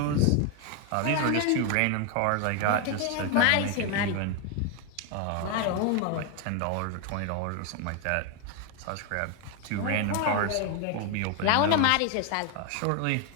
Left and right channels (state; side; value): different; both; correlation 0.01